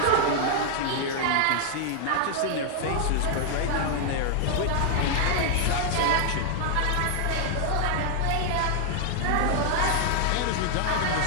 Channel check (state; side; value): different; both; correlation -0.01